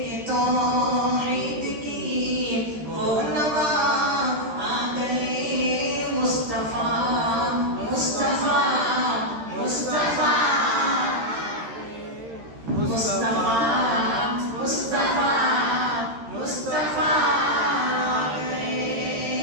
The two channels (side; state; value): left; late; 13 ms